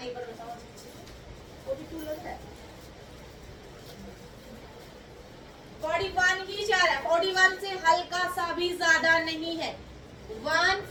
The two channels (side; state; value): both; identical; correlation 1.00